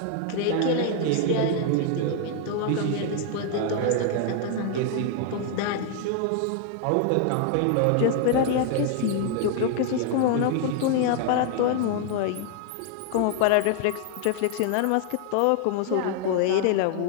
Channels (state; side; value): different; both; correlation 0.00